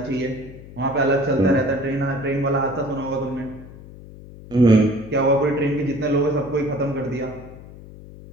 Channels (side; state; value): left; noise; hum, 17 dB below the sound